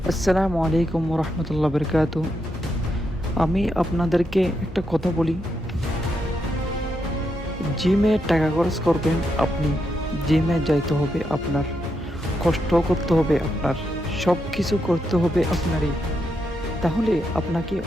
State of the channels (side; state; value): both; normal; correlation 0.82